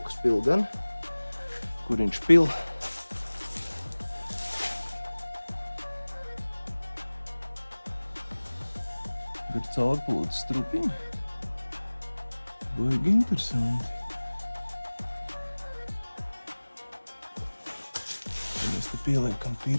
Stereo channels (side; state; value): both; inverted; correlation -1.00